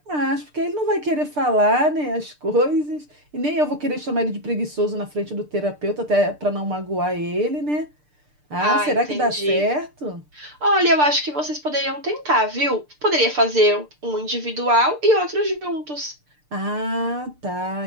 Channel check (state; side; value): late; left; 6.7 ms